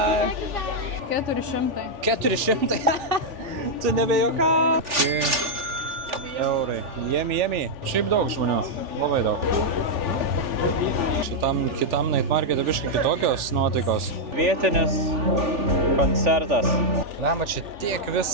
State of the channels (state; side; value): late; left; 3.4 ms